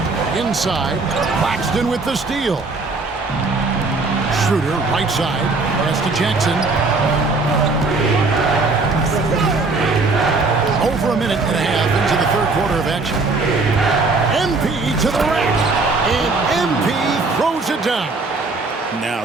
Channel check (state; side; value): quieter; left; 3.7 dB